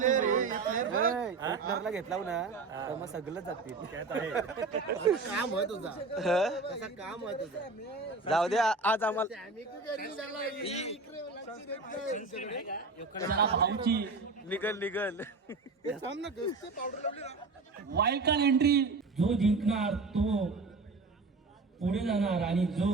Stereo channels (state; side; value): quieter; left; 3.9 dB